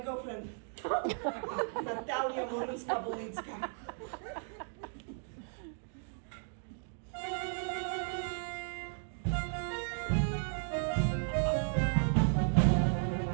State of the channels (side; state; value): left; silent; 54 dB below the other